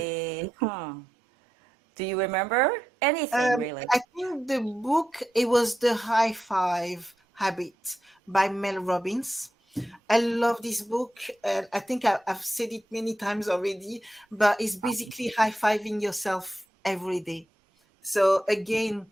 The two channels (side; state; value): both; normal; correlation 0.88